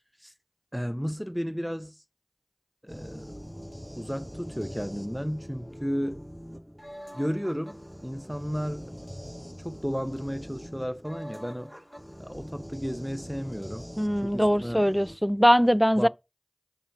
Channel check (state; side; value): identical; both; correlation 1.00